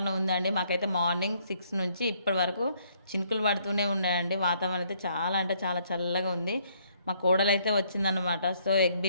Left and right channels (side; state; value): both; inverted; correlation -0.68